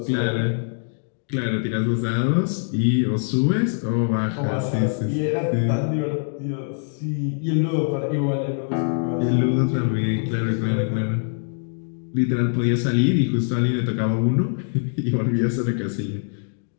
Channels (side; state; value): right; silent; digital silence